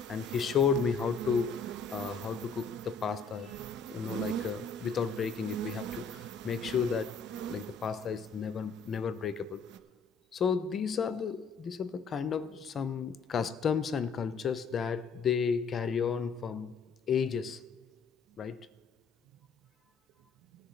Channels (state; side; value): quieter; right; 5.0 dB